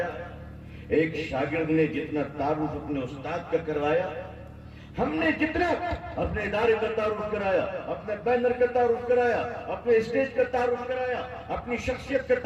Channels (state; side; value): identical; both; correlation 1.00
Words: ایک شاگرد نے جتنا تعارف اپنے استاد کا کروایا، ہم نے جتنا اپنے ادارے کا تعارف کرایا، اپنے بینر کا تعارف کرایا، اپنے اسٹیج کا تعارف کرایا، اپنی شخصیت کا